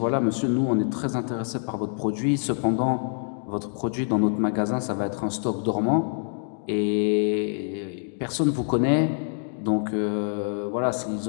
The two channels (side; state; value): right; silent; digital silence